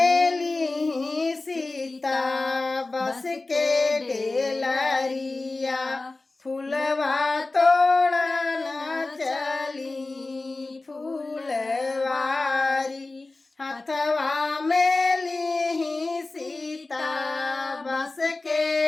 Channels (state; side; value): quieter; right; 3.3 dB